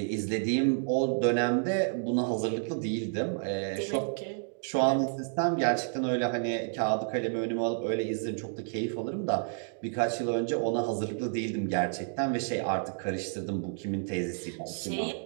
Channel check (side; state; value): left; silent; 58 dB below the other